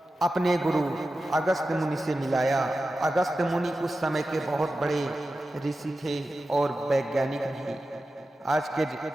अपने गुरु अगस्त मुनि से मिलाया। अगस्त मुनि उस समय के बहुत बड़े ऋषि थे और वैज्ञानिक भी, आज के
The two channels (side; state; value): both; normal; correlation 0.93